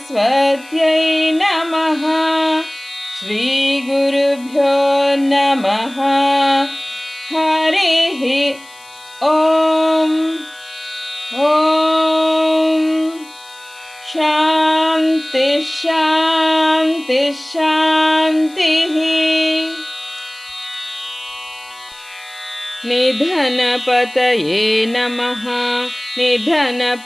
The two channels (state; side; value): noise; left; hiss, 24 dB below the sound